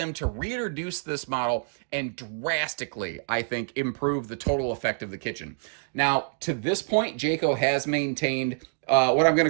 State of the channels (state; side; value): silent; left; digital silence